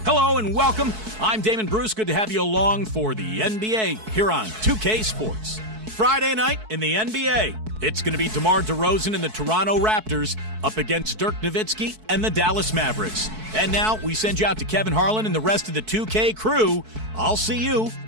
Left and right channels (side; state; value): left; late; 4.6 ms